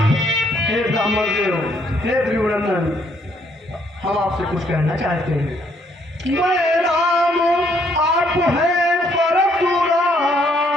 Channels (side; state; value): both; normal; correlation 0.68